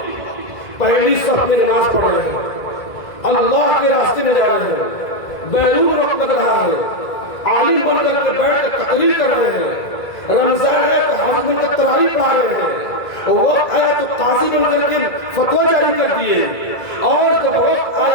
پہلی صف میں نماز پڑھ رہے ہیں، اللہ کے راستے میں جا رہے ہیں، بیرون وقت لگ رہا ہے، عالم بن کر کے بیٹھ کے تقریر کر رہے ہیں، رمضان آیا تو حج بن کر تراویح پڑھا رہے ہیں، وقت آیا تو قاضی بن کر کے فتویٰ جاری کر دیے، اور جب وقت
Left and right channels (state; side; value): late; right; 2.0 ms